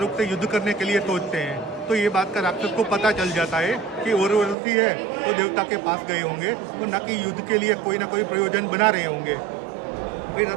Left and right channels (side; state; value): left; drops out; at 4.5 s